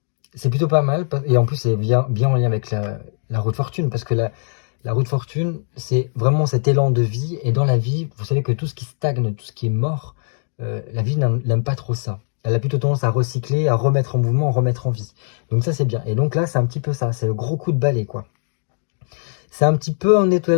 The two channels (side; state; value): right; silent; digital silence